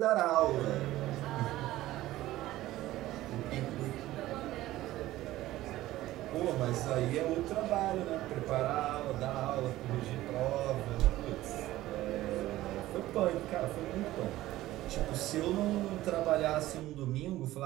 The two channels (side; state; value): left; quieter; 15.9 dB